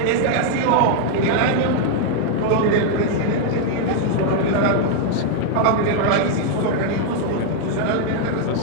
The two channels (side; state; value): both; different; correlation 0.00